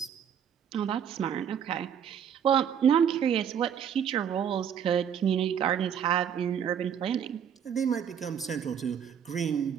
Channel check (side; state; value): left; quieter; 8.4 dB